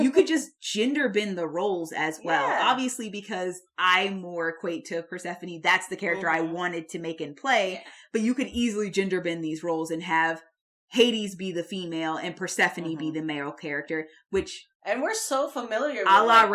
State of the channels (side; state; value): both; identical; correlation 1.00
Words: just gender bend the roles as well. Yeah. Obviously, because I more equate to Persephone. That's the character I wanted to make and play. Yeah. But you could easily gender bend these roles and have Hades be the female and Persephone be the male character, which... And we're so familiar with... A la